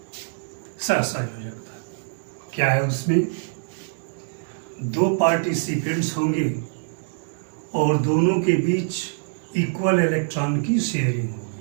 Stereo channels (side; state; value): left; silent; digital silence